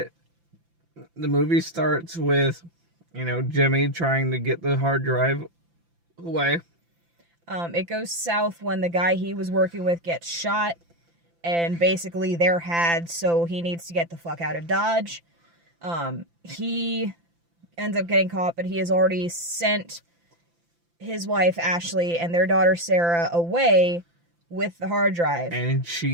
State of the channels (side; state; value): left; late; 5.9 ms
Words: the movie starts with Jimmy trying to get the hard drive away. It goes south when the guy he was working with gets shot, and basically they're had, so he needs to get the fuck out of Dodge. He ends up getting caught, but he has already sent his wife, Ashley, and their daughter, Sarah, away with the hard drive. And